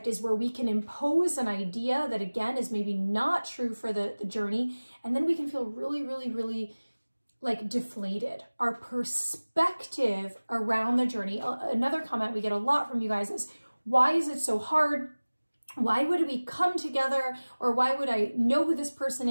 is where we can impose an idea that, again, is maybe not true for the journey, and then we can feel really, really, really like deflated. Our perspective around the journey. Another comment we get a lot from you guys is, why is it so hard? Why would we come together? Or why would I know who this person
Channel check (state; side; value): inverted; both; correlation -1.00